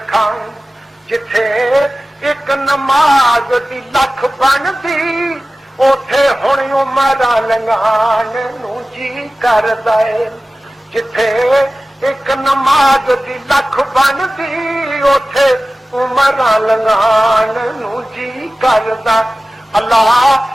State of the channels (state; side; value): normal; both; correlation 0.96